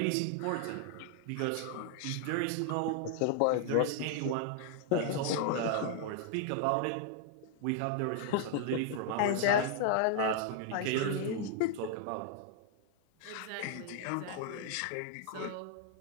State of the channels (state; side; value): different; both; correlation 0.00